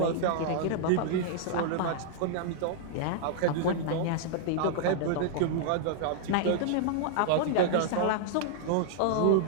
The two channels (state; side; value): different; both; correlation -0.01